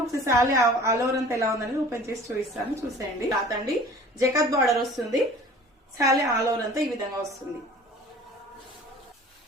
ఒకసారి శారీ ఆల్ ఓవర్ అంతా ఎలా ఉందని ఓపెన్ చేసి చూపిస్తాను, చూసేయండి. రాతండి జకాట్ బార్డర్ వస్తుంది. శారీ ఆల్ ఓవర్ అంతా ఈ విధంగా వస్తుంది.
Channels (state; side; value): normal; both; correlation 0.46